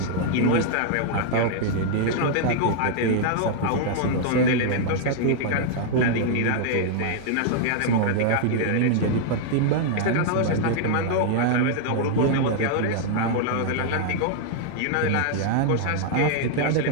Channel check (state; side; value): different; both; correlation -0.01